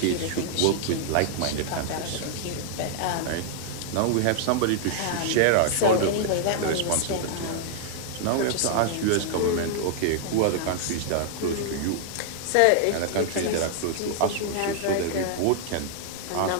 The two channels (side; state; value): both; different; correlation -0.01